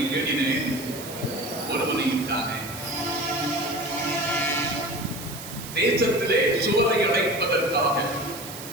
தேடினேன், ஒருவனையும் தானே. தேசத்திலே சுவரை அடைப்பதற்காக,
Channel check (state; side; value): noise; right; hiss, 12 dB below the sound